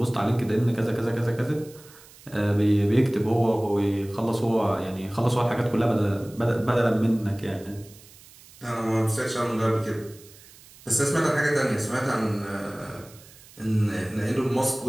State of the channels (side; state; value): right; noise; hiss, 23 dB below the sound